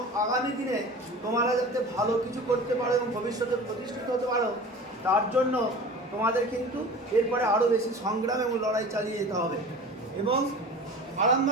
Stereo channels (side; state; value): both; normal; correlation 0.38